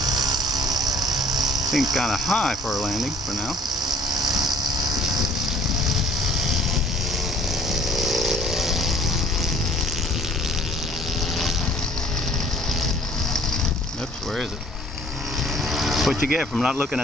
Seems kind of high for a landing for now. Oops, where is it? What you get from not looking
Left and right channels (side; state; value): both; normal; correlation 0.54